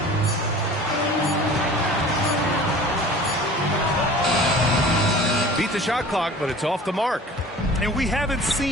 Beat the shot clock, but it's off the mark. And we haven't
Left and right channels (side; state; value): both; normal; correlation 0.43